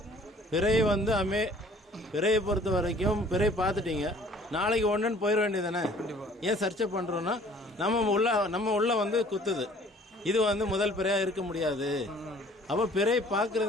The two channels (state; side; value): normal; both; correlation 0.53